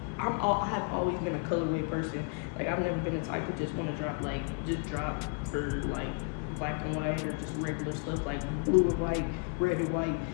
have always been a colorway person. Like, I've never been the type to just want to drop for like black and white or just regular stuff like blue and white, red and white,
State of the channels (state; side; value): quieter; right; 34.5 dB